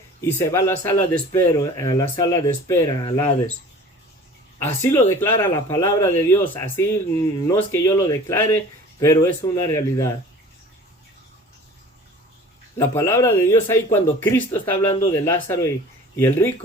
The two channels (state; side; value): normal; both; correlation 0.44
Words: y se va a la sala de espera, al Hades. Así lo declara la palabra de Dios, así no es que yo lo declare, pero es una realidad. La palabra de Dios ahí cuando Cristo está hablando de Lázaro y el